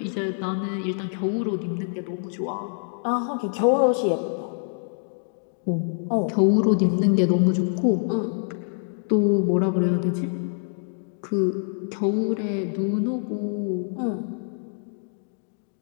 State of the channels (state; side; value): silent; right; digital silence